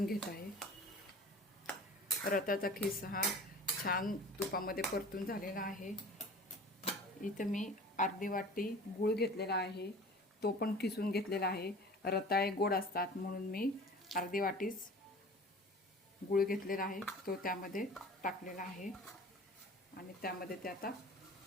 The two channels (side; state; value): both; normal; correlation 0.42